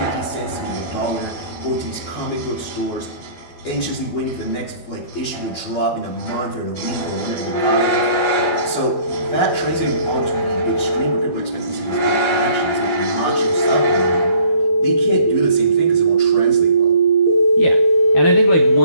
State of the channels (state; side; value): late; right; 12 ms